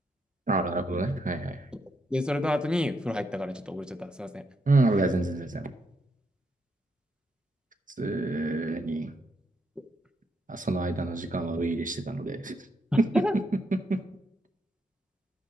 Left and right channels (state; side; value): normal; both; correlation 0.78